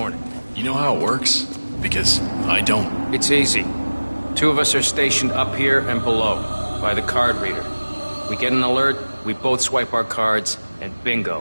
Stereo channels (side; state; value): both; inverted; correlation -1.00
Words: You know how it works? Because I don't. It's easy. Two of us are stationed up here and below, by the card reader. We get an alert, we both swipe our cards, and